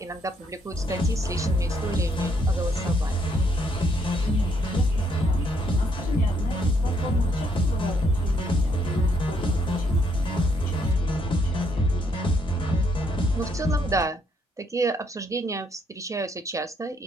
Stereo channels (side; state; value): both; normal; correlation 0.72